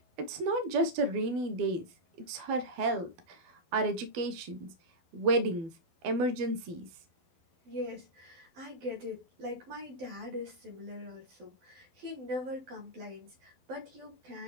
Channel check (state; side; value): late; left; 12 ms